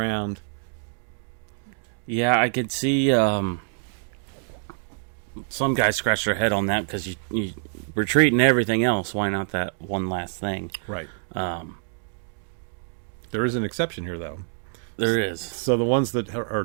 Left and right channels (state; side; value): silent; left; digital silence